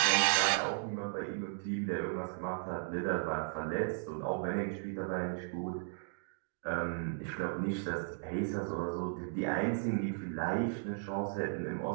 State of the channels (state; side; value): silent; left; digital silence